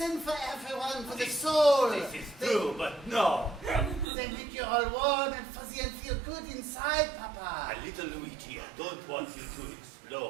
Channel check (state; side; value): drops out; left; at 4.0 s